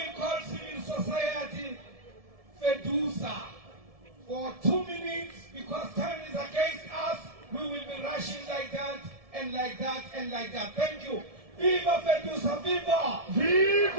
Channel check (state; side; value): late; left; 1.7 ms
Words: call civil society Fedusa for 2 minutes because time is against us. We will be rushing like that and like that and like that. Thank you. Viva Fedusa, viva!